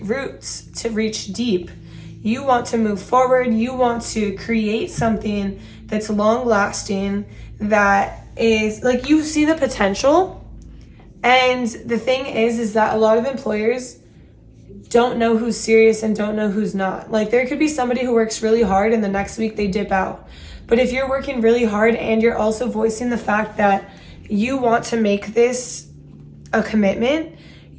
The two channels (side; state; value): both; identical; correlation 1.00